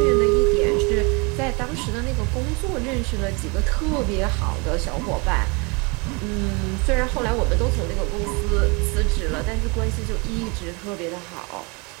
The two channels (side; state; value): left; quieter; 30.2 dB